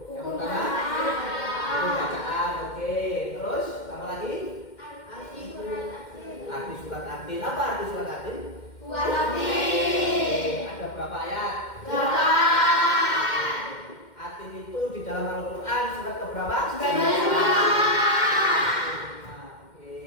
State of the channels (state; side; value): late; right; 2.1 ms